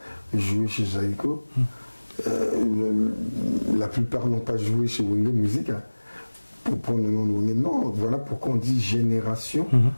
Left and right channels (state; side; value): inverted; both; correlation -1.00